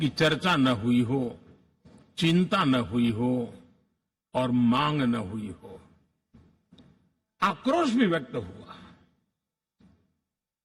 चर्चा न हुई हो, चिंता न हुई हो और मांग न हुई हो। आक्रोश भी व्यक्त हुआ,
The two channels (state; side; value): identical; both; correlation 1.00